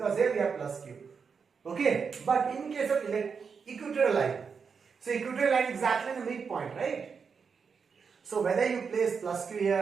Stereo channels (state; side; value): quieter; left; 5.8 dB